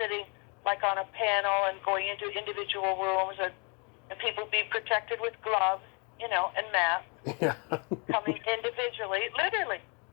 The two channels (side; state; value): right; quieter; 34.4 dB